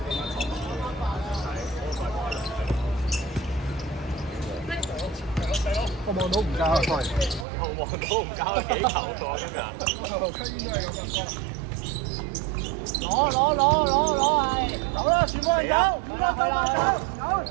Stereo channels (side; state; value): left; drops out; at 7.5 s